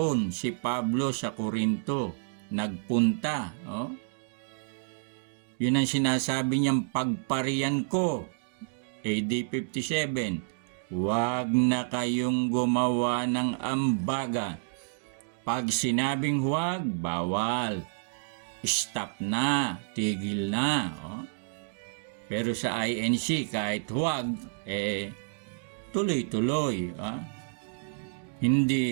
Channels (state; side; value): silent; left; digital silence